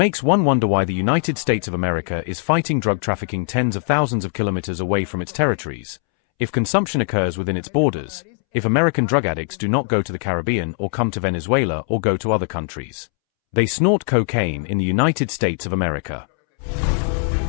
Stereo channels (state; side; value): silent; right; 65 dB below the other